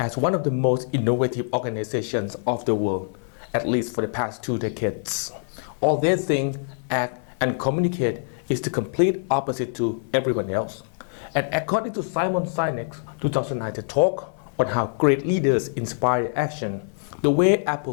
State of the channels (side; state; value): right; silent; 58 dB below the other